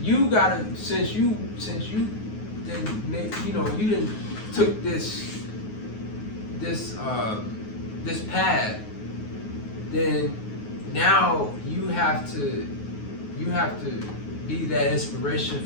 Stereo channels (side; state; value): right; late; 9.5 ms